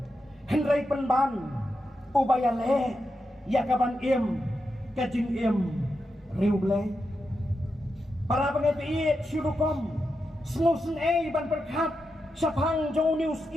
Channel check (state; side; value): normal; both; correlation 0.87